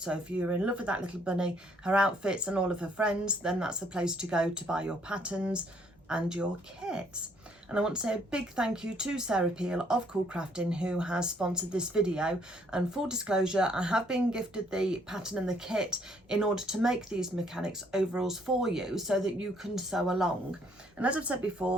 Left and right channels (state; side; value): normal; both; correlation 0.66